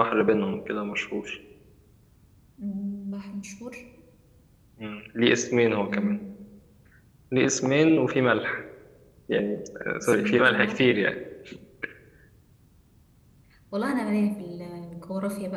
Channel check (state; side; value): identical; both; correlation 1.00